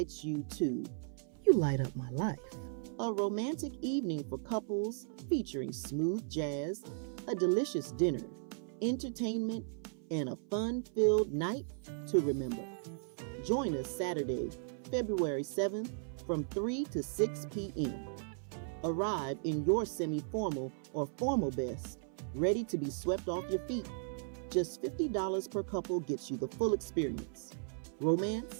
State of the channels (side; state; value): left; silent; 54 dB below the other